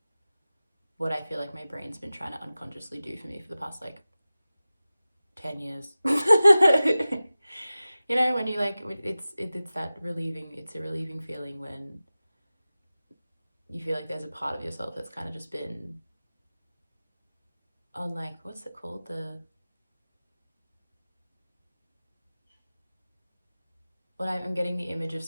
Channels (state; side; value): inverted; both; correlation -0.96